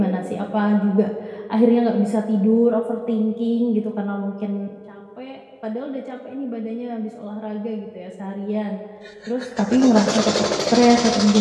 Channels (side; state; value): both; identical; correlation 1.00